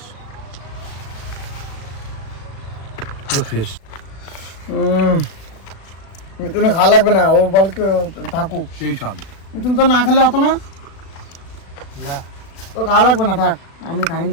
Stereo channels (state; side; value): late; right; 36 ms